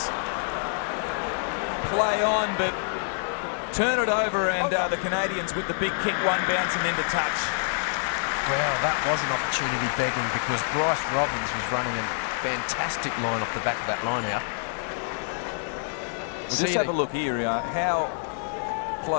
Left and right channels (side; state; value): right; silent; digital silence